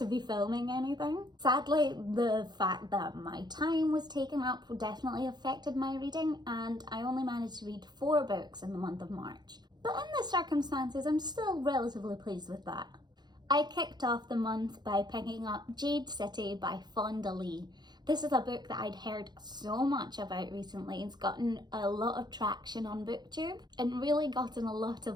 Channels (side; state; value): left; late; 0.21 ms